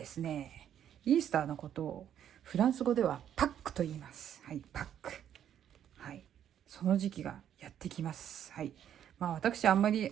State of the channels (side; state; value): left; quieter; 9.9 dB